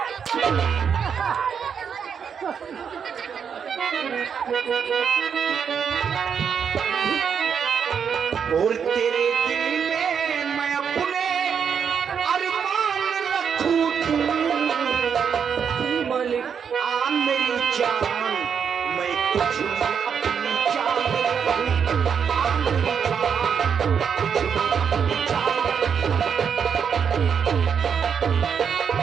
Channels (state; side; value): quieter; left; 7.1 dB